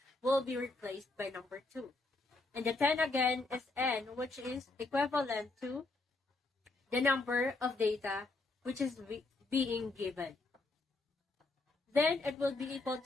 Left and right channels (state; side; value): quieter; right; 3.2 dB